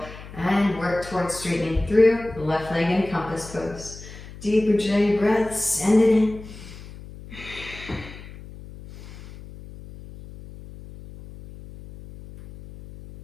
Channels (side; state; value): left; noise; hum, 15 dB below the sound